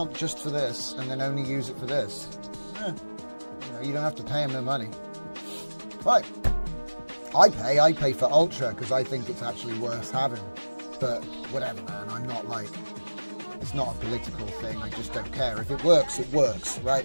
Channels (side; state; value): both; inverted; correlation -1.00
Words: just for this, and then only use it for this. Yeah. You don't have to pay them no money. Right. I pay for Ultra because I think it's actually worth having. But whatever, man. I'm not like, it's not a political thing. I just don't care. If it works, right?